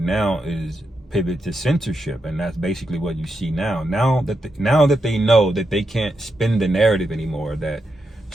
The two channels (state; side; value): normal; both; correlation 0.85